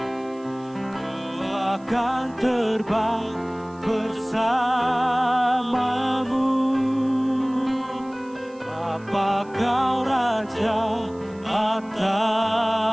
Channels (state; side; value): noise; right; hiss, 30 dB below the sound